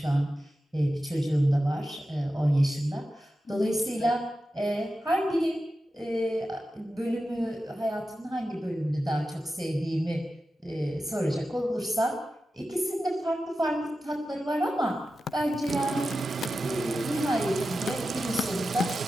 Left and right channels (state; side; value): normal; both; correlation 0.92